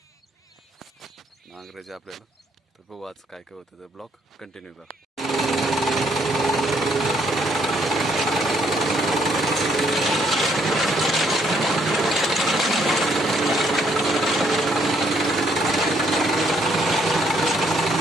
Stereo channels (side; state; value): both; normal; correlation 0.69